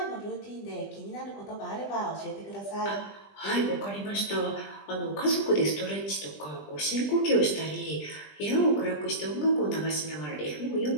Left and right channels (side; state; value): right; late; 20 ms